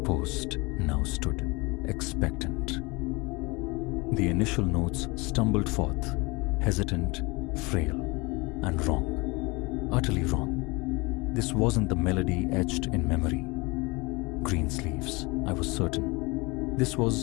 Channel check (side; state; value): right; quieter; 25.8 dB